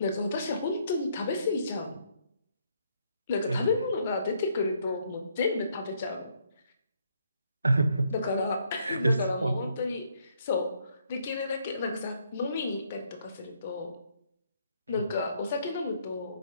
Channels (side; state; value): both; inverted; correlation -0.70